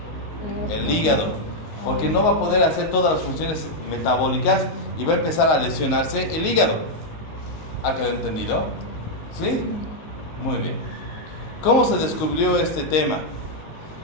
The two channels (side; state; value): right; late; 19 ms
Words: El hígado. Porque no va a poder hacer todas las funciones metabólicas y va a empezar a lesionarse el hígado. ¿Ha quedado entendido? ¿Sí? Muy bien. ¿Cómo se descubrió este tema?